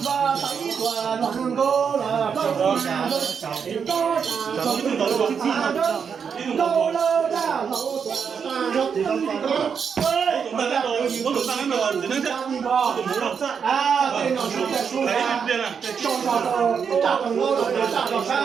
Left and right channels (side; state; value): left; quieter; 6.6 dB